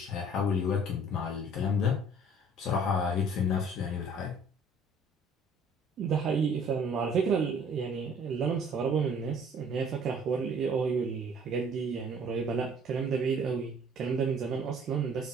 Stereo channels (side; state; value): both; normal; correlation 0.55